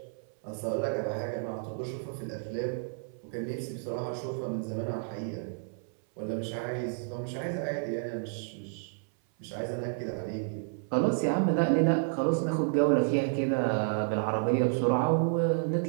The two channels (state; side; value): silent; left; 57 dB below the other